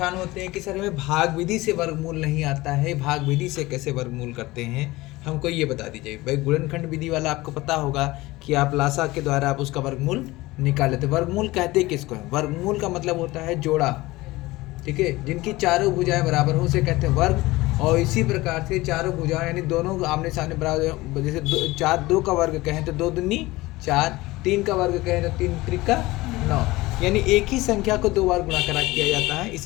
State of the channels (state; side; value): quieter; right; 19.8 dB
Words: होते हैं कि सर हमें भाग विधि से वर्गमूल नहीं आता है, भाग विधि से कैसे वर्गमूल करते हैं, हमको ये बता दीजिए। भाई गुणनखंड विधि वाला आपको पता होगा कि आप लासा के द्वारा आप उसका वर्गमूल निकाल लेते। वर्गमूल कहते किसको है? वर्गमूल का मतलब होता है जोड़ा, ठीक है, जिनकी चारों भुजाएं बराबर हो उसे कहते हैं वर्ग। और इसी प्रकार से चारों भुजाएं यानी दोनों आमने सामने बराबर, जैसे दो का वर्ग कहें तो दो दूनी 4, 3 का वर्ग कहें तो 3 त्रिका 9, यानी एक ही संख्या को 2 बार गुणा करा किया जाता है,